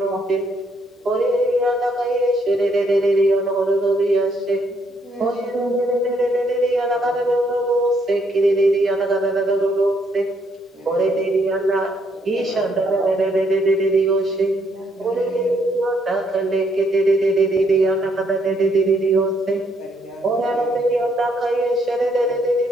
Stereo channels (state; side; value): normal; both; correlation 0.72